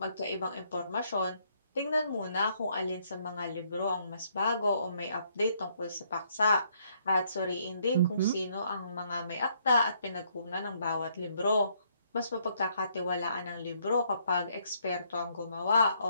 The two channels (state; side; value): inverted; both; correlation -0.70